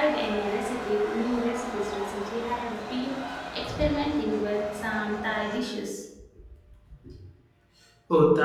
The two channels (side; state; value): both; identical; correlation 1.00